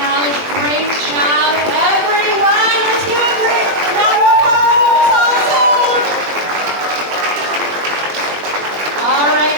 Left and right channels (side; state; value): left; late; 20 ms